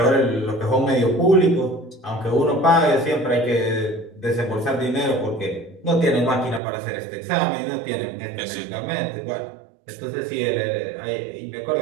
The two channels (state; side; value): drops out; left; at 6.6 s